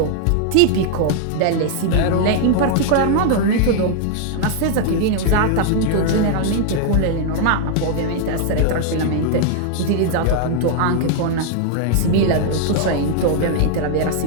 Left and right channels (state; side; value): different; both; correlation 0.00